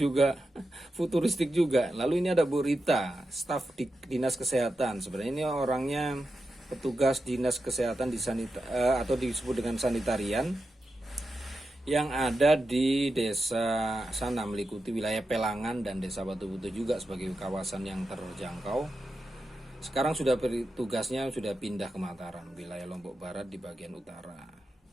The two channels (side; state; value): both; normal; correlation 0.89